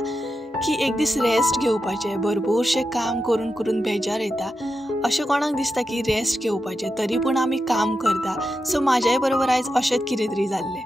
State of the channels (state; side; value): normal; both; correlation 0.88